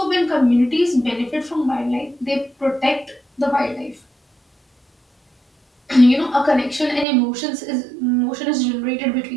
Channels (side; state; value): left; drops out; at 7.1 s